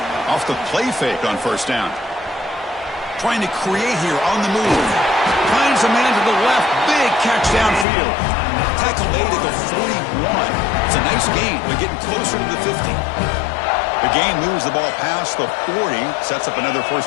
Off the play fake on first down. Trying to create here on the move. Finds a man to the left. Big catch downfield. Tackle made at the 41. It's a nice gain. They're getting closer to the 50. The game moves the ball past the 40, sets up another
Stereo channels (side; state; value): right; drops out; at 7.9 s